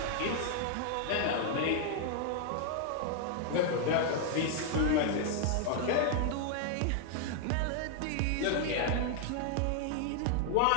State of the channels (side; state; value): both; different; correlation 0.00